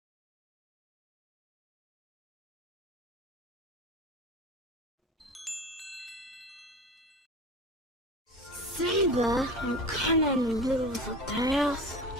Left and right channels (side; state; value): both; normal; correlation 0.33